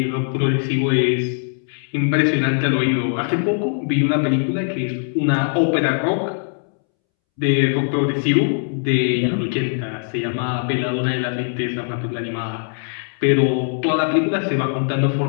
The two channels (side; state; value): right; silent; 65 dB below the other